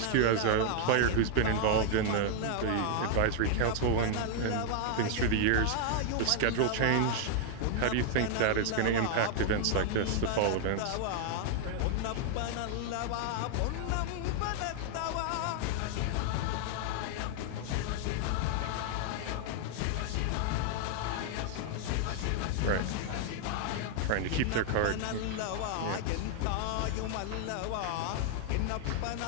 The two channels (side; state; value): both; different; correlation 0.00